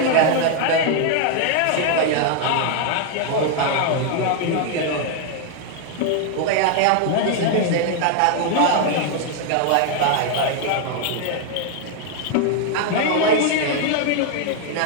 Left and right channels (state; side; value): different; both; correlation 0.00